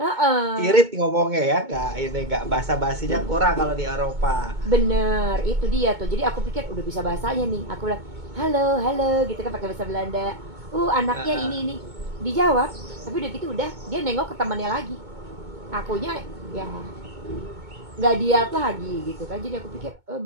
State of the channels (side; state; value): left; late; 2.2 ms